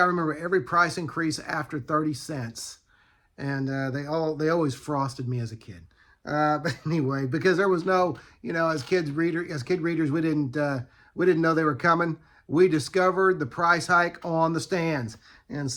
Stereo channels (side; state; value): both; identical; correlation 1.00